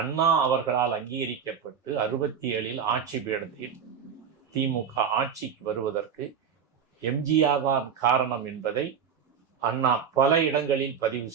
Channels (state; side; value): quieter; left; 7.4 dB